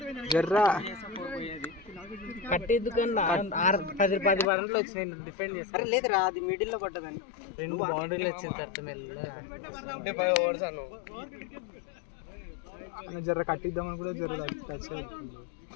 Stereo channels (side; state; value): right; drops out; at 4.5 s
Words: జర్రా కట్టేందుకన్నా 10 రన్లు వచ్చినాయి డిఫెండ్ చేస్తారు. లేదురా అది మిడిల్లో పడ్డదని 2 బౌండరీలు వచ్చిన తర్వాత మెల్లగా జర్ర కట్టిద్దామని కూడా జర్ర టచ్